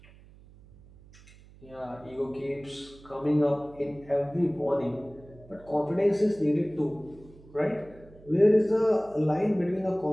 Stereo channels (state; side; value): noise; right; hum, 23 dB below the sound